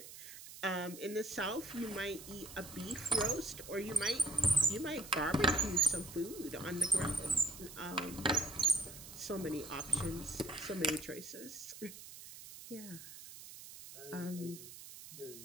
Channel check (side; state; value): right; noise; hiss, 14 dB below the sound